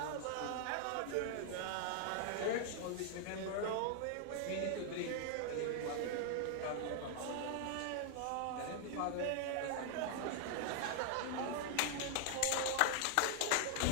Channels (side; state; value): both; different; correlation -0.01